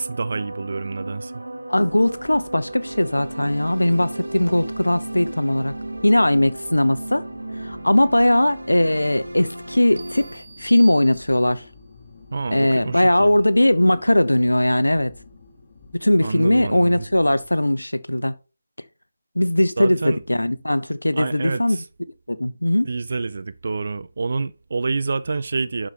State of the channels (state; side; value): inverted; both; correlation -0.99